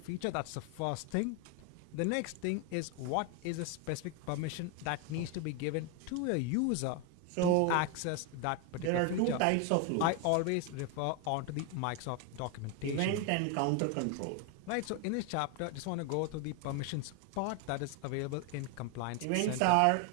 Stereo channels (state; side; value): different; both; correlation 0.01